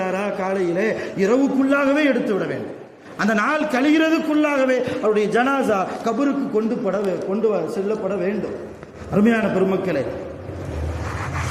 காலையிலே இரவுக்குள்ளாகவே எடுத்து விட வேண்டும். அந்த நாள் கழிகிறதுக்குள்ளாகவே அவருடைய ஜனாசா கபருக்கு கொண்டு செல்லப்பட வேண்டும். அருமையான பெருமக்களே,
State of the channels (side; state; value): both; identical; correlation 1.00